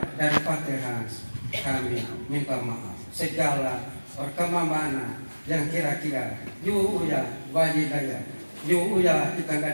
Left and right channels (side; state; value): both; inverted; correlation -1.00